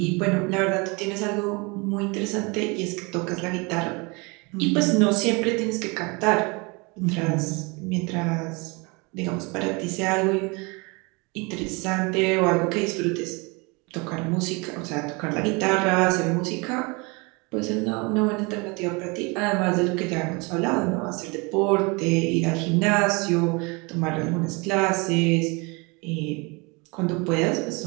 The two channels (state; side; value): quieter; left; 28.4 dB